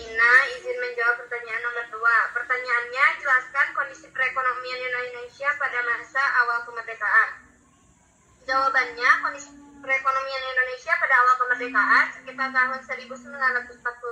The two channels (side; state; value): both; identical; correlation 1.00